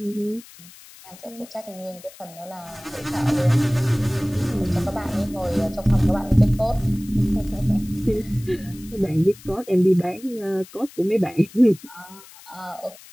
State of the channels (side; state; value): left; noise; hiss, 21 dB below the sound